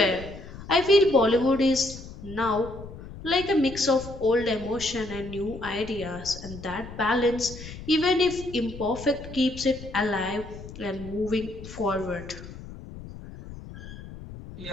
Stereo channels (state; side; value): noise; left; rumble, 13 dB below the sound